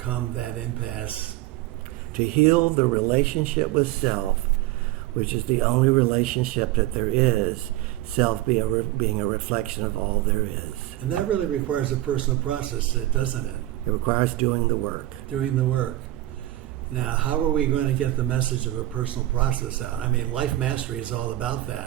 that impasse? To heal the relationship with self, which is the only relationship that there is, self being a reflection of all there is. And that really requires a personal process, doesn't it? It requires doing the work. Doing the work. Now, how are we going to get the message of a personal process out? I mean, Life Mastery is all about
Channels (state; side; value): quieter; left; 15.8 dB